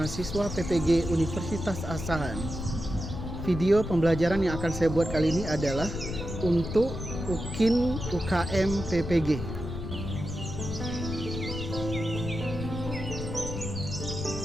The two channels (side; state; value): left; noise; rumble, 6 dB below the sound